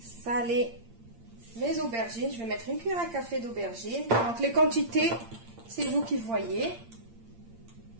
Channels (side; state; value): left; late; 8.7 ms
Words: mes aubergines. Je vais mettre une cuillère à café d'aubergines. Donc les quantités, c'est vous qui voyez.